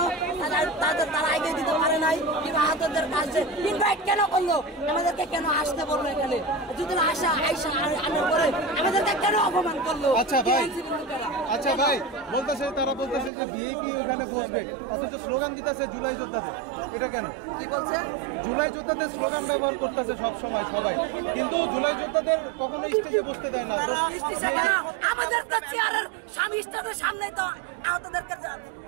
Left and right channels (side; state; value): left; drops out; at 13.3 s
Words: তারা এগিয়ে দিতে পারে নাই কিংবা আহতদের কাছে ইনভাইট কেন করলো, আমাদেরকে কেন আসতে বললো এখানে, যদি আইসা আনার পরে আমাদেরকে কেন অপমান করলো? আচ্ছা ভাই বলতেছে, তারা বলতেছে যে ভিআইপি ওখানে বসবে, অথচ স্লোগান দিতেছে জুলাই যোদ্ধাদের, এটা কেন? কি বলছে? জুলাই যোদ্ধাদের স্লোগান ব্যবহার করতেছে সবসময় সবাই, কিন্তু জুলাই যোদ্ধাদের কখনো স্টেজে বসতে দেয় না। আমাদের তো চেয়ারের স্বামী স্টেজের সামনে তো আহতদেরকে